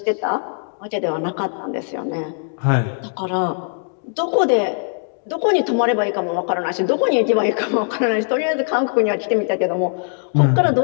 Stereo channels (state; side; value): silent; right; 66 dB below the other